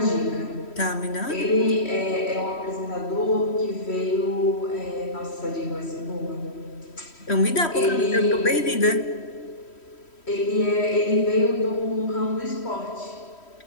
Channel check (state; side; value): late; right; 3.1 ms